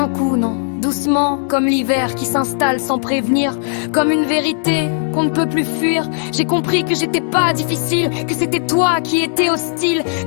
coup, non. Doucement, comme l'hiver qui s'installe sans prévenir, comme une vérité qu'on ne peut plus fuir. J'ai compris que j'étais pas difficile, que c'était toi qui étais hostile,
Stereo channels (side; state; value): right; silent; digital silence